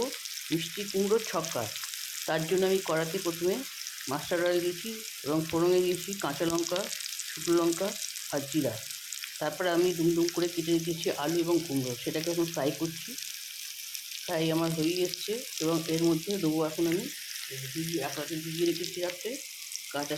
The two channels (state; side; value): identical; both; correlation 1.00